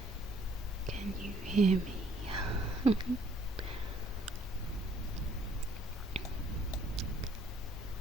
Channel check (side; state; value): both; normal; correlation 0.62